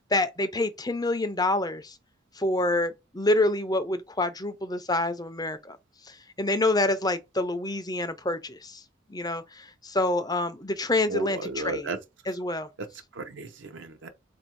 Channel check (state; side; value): normal; both; correlation 0.43